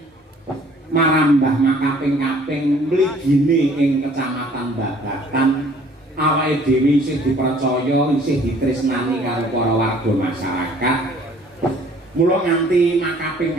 Marambah makaping-kaping mligine ing kecamatan Babatan awake dhewe isih dipercaya isih ditresnani karo para warga masyarakat. Mula nganti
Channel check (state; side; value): normal; both; correlation 0.56